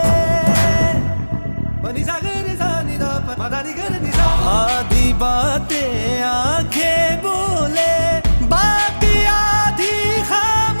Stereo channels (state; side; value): inverted; both; correlation -1.00